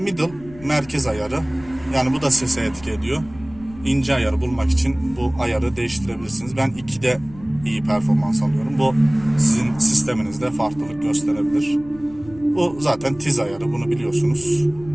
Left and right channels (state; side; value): noise; left; rumble, 20 dB below the sound